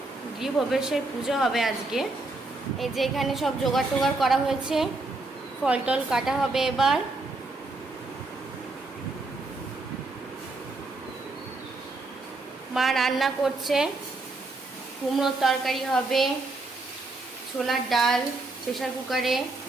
গৃহপ্রবেশের পুজো হবে আজকে। এই যে এখানে সব জোগাড় টোগাড় করা হয়েছে, ফল টল কাটা হবে এবার। মা রান্না করছে, কুমড়োর তরকারি হবে, ছোলার ডাল প্রেসার কুকারে।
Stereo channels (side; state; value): left; quieter; 3.2 dB